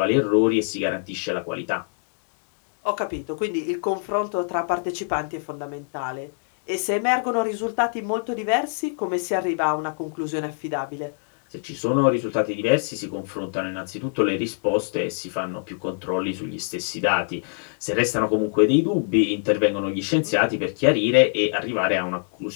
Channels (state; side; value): silent; right; digital silence